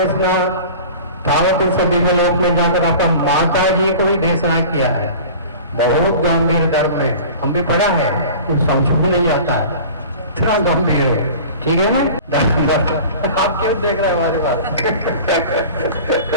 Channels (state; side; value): inverted; both; correlation -0.39